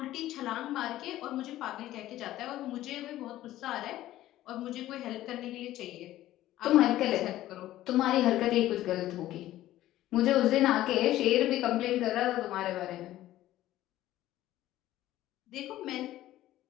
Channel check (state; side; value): quieter; right; 14.5 dB